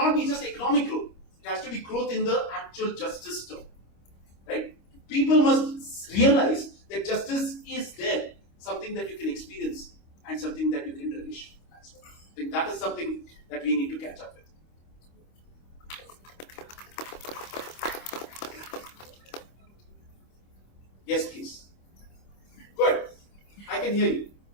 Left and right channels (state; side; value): late; right; 25 ms